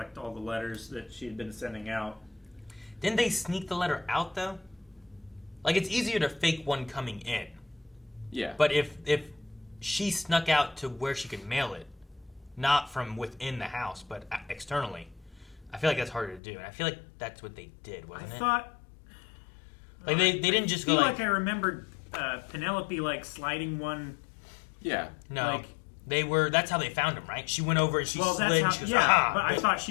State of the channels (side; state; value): right; drops out; at 16.4 s